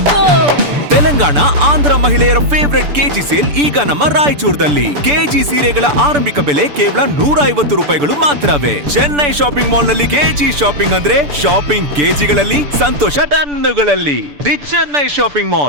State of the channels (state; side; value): late; left; 6.9 ms